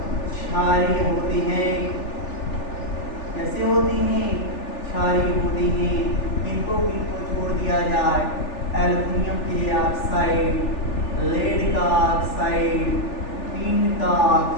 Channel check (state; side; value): late; right; 3.4 ms